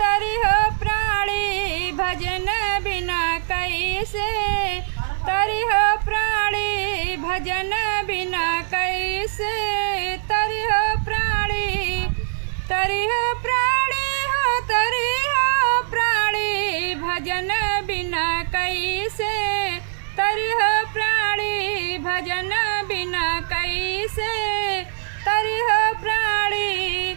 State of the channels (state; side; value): silent; left; digital silence